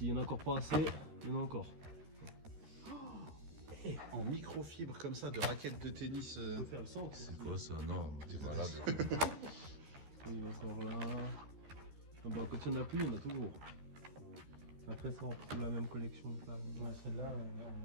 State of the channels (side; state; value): left; late; 13 ms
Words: y en a encore pas assez, il y en a encore. En microfibre comme ça, de raquettes de tennis. On peut faire le centre. C'est quoi ça? Non, t'es malade. Il y en a encore là. Ah bah, quand il n'y en a plus, il y en a toujours. Après ça, on retrouve la même collection que là. Celle-là,